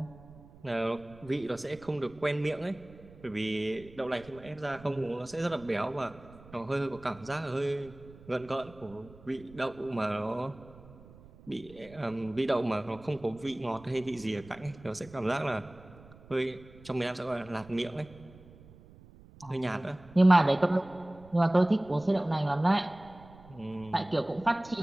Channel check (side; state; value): right; noise; rumble, 21 dB below the sound